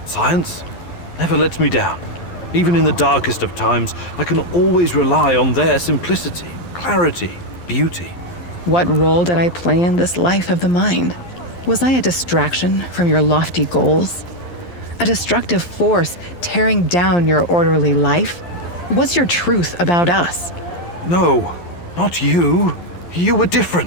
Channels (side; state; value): right; late; 11 ms